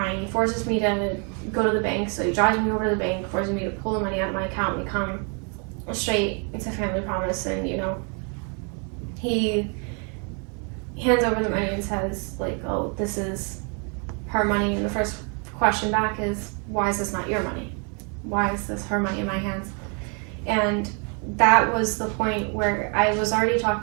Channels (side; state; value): left; quieter; 37.7 dB